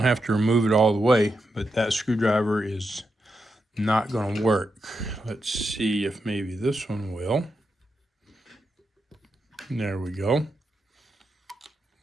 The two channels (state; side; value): normal; both; correlation 0.86